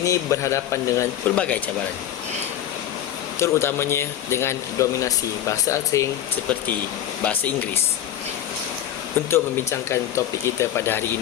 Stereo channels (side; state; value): right; quieter; 11.4 dB